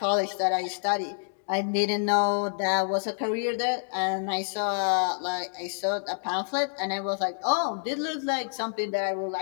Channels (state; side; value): silent; right; digital silence